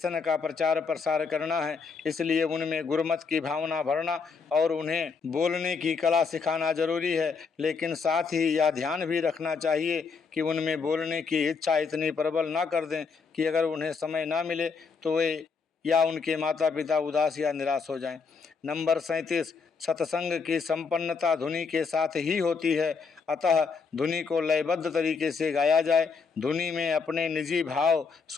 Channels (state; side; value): quieter; right; 5.2 dB